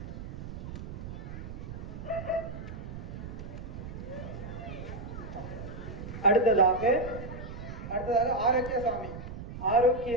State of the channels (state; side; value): noise; right; rumble, 9 dB below the sound